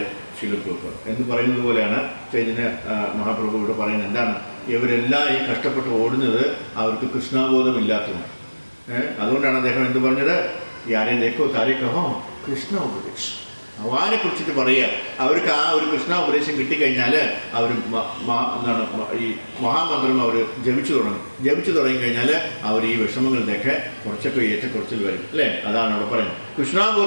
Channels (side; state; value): both; inverted; correlation -1.00